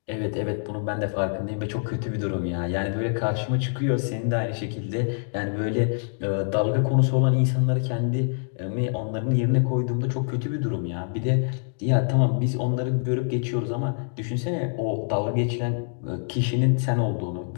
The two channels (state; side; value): silent; right; digital silence